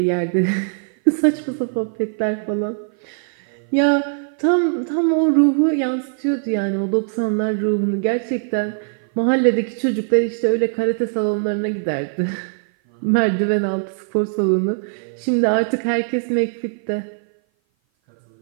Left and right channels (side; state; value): left; silent; 57 dB below the other